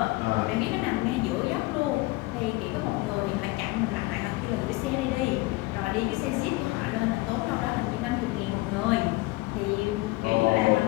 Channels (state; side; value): quieter; right; 21.5 dB